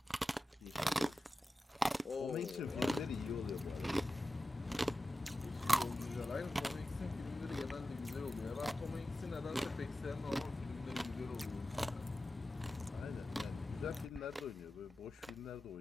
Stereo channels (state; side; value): normal; both; correlation 0.94